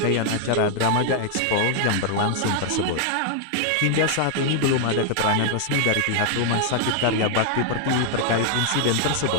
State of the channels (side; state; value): both; different; correlation 0.00